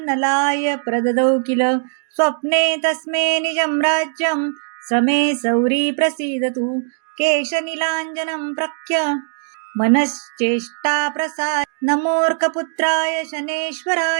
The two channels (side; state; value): left; silent; digital silence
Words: नलाय प्रददौ किल स्वप्ने तस्मे निजं राज्यं समे सौरी प्रसीदतु केशनीलाञ्जनं प्रख्य मनश्चेष्टा प्रसाद नमोर्कपुत्राय